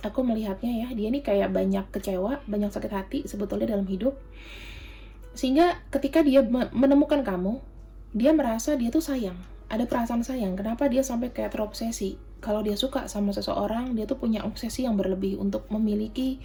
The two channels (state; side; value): identical; both; correlation 1.00